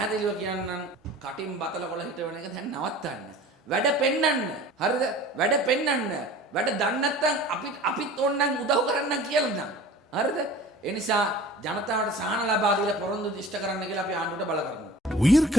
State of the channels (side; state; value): both; normal; correlation 0.43